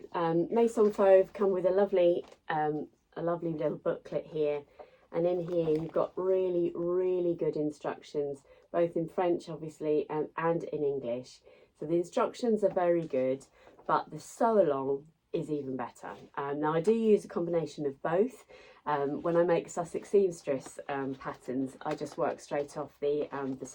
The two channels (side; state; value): both; identical; correlation 1.00